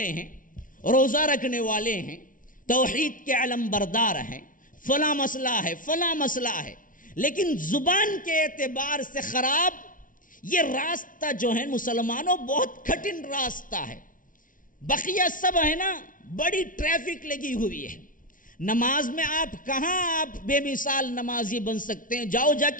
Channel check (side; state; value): right; late; 0.38 ms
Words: ہیں، روزہ رکھنے والے ہیں، توحید کے علم بردار ہیں، فلاں مسئلہ ہے، فلاں مسئلہ ہے، لیکن زبان کے اعتبار سے خراب یہ راستہ جو ہے مسلمانوں بہت کٹھن راستہ ہے۔ بقیہ سب ہے نا بڑی ٹریفک لگی ہوئی ہے، نماز میں آپ کہاں آپ بے مثال نمازی بن سکتے ہیں؟ جاؤ جا